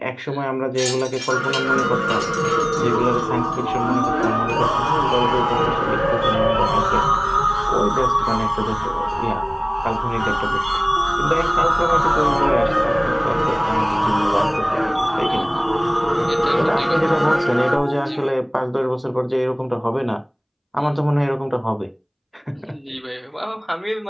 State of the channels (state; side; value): identical; both; correlation 1.00